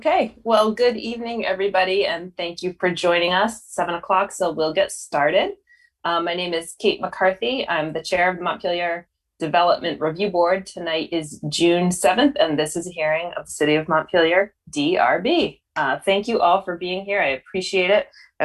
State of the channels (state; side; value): identical; both; correlation 1.00